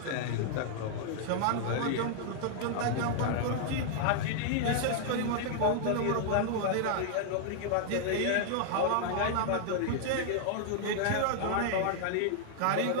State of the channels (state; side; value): different; both; correlation 0.00